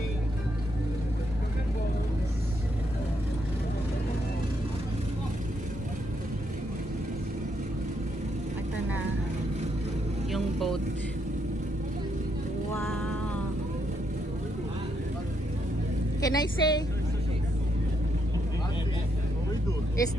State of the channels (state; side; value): normal; both; correlation 0.77